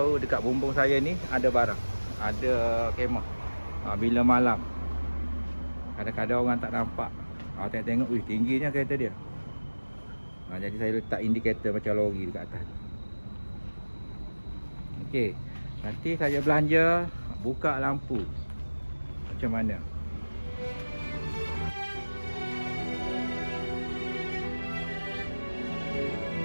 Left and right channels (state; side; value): inverted; both; correlation -1.00